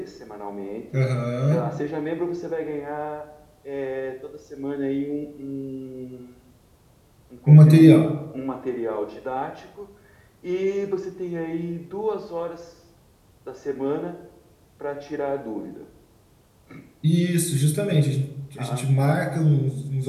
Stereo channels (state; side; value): identical; both; correlation 1.00